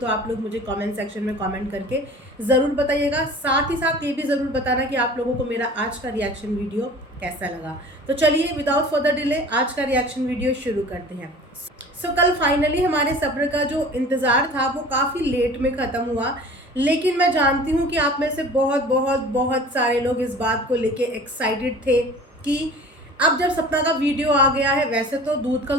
आप लोग मुझे कमेंट सेक्शन में कमेंट करके ज़रूर बताइएगा। साथ ही साथ ये भी ज़रूर बताना कि आप लोगों को मेरा आज का रिएक्शन वीडियो कैसा लगा। तो चलिए विदाउट फर्दर डिले आज का रिएक्शन वीडियो शुरू करते हैं। कल फाइनली हमारे सब्र का जो इंतज़ार था वो काफ़ी लेट में ख़त्म हुआ, लेकिन मैं जानती हूँ कि आप में से बहुत बहुत बहुत सारे लोग इस बात को लेके एक्साइटेड थे कि अब जब सपना का वीडियो आ गया है। वैसे तो दूध का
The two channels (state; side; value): normal; both; correlation 0.43